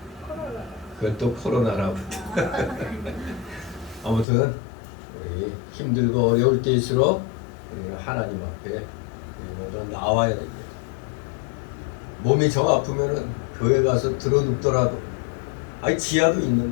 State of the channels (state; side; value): drops out; right; at 4.2 s